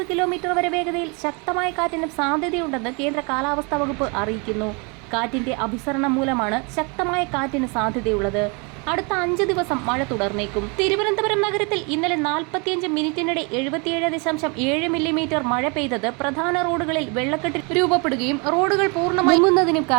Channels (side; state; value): left; quieter; 31.9 dB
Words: കിലോമീറ്റർ വരെ വേഗതയിൽ ശക്തമായ കാറ്റിനും സാധ്യതയുണ്ടെന്ന് കേന്ദ്ര കാലാവസ്ഥാ വകുപ്പ് അറിയിക്കുന്നു. കാറ്റിന്റെ അഭിസരണം മൂലമാണ് ശക്തമായ കാറ്റിന് സാധ്യതയുള്ളത്. അടുത്ത 5 ദിവസം മഴ തുടർന്നേക്കും. തിരുവനന്തപുരം നഗരത്തിൽ ഇന്നലെ 45 മിനിറ്റിനിടെ 77.7 മില്ലിമീറ്റർ മഴ പെയ്തത് പ്രധാന റോഡുകളിൽ വെള്ളക്കെട്ട് രൂപപ്പെടുകയും റോഡുകൾ പൂർണ്ണമായി മുങ്ങുന്നതിനും